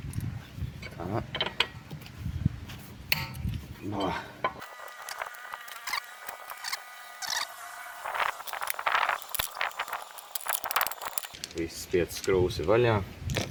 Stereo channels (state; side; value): identical; both; correlation 1.00